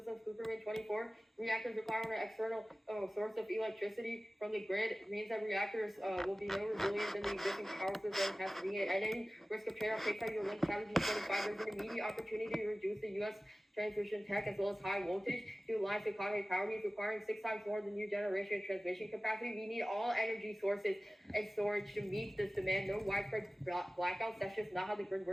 Cooperman 24. Reactors require an external source of electricity from the grid. It means that reactors will be no resilient than the existing power system has to be. At any risk of trade-off, takes out your link challenge in 25. There's an immediate opportunity to reduce the U.S. transmission tech as well as high voltage to lines to economy power needs, requiring 6 times more than new generation transmission capacity. We need all energy sources and storage to meet this demand. No widespread blackouts. That's just not how the grid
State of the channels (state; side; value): normal; both; correlation 0.97